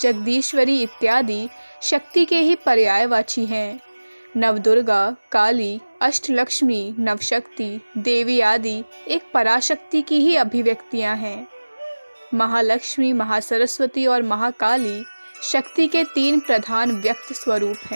इत्यादि शक्ति के ही पर्यायवाची हैं। नवदुर्गा, काली, अष्टलक्ष्मी, नवशक्ति, देवी आदि एक पराशक्ति की ही अभिव्यक्तियां हैं। महालक्ष्मी, महासरस्वती और महाकाली शक्ति के तीन प्रधान व्यक्त स्वरूप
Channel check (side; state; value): both; inverted; correlation -1.00